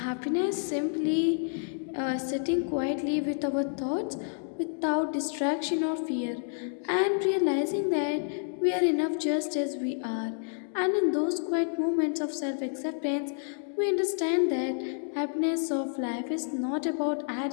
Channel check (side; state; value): right; silent; digital silence